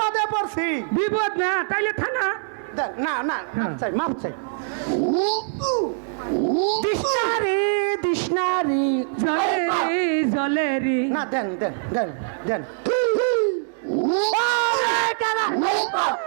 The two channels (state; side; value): silent; left; digital silence